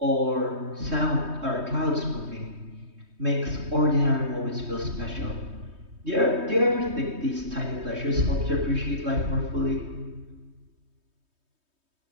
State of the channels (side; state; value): left; late; 3.2 ms